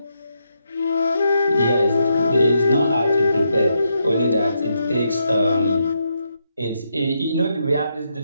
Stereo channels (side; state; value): both; inverted; correlation -0.81